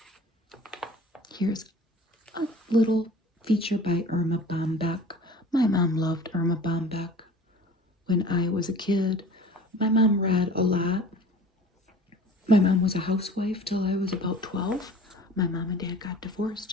Here's a little feature by Irma Bombeck. My mom loved Irma Bombeck. When I was a kid, my mom read a lot. My mom was a housewife till I was about 12. My mom and dad got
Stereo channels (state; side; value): normal; both; correlation 0.44